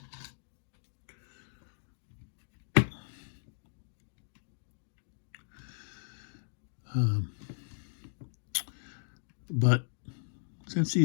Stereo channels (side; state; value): right; silent; digital silence